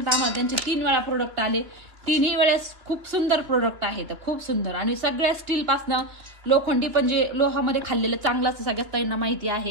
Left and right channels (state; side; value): late; left; 2.6 ms